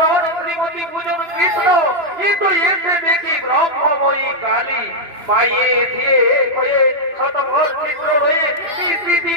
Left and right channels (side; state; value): left; late; 2.9 ms